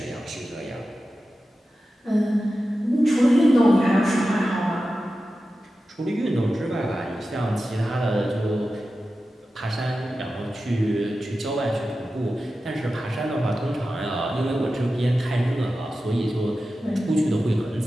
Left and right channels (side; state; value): both; normal; correlation 0.93